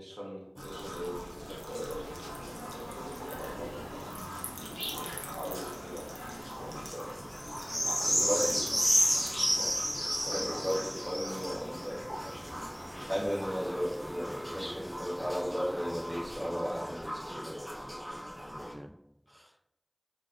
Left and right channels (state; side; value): identical; both; correlation 1.00